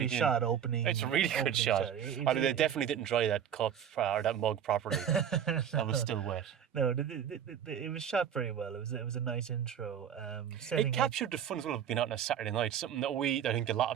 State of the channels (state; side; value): quieter; left; 8.8 dB